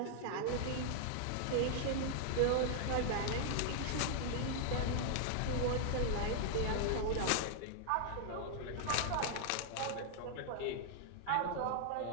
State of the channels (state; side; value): different; both; correlation -0.01